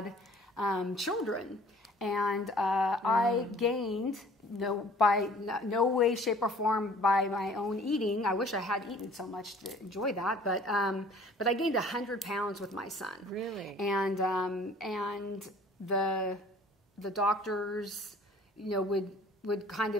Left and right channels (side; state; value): both; normal; correlation 0.52